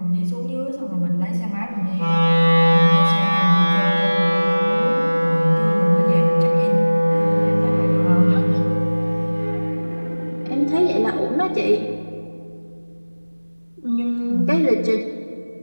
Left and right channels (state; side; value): inverted; both; correlation -1.00